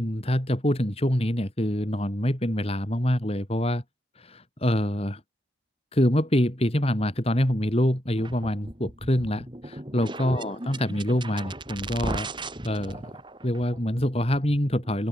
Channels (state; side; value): normal; both; correlation 0.81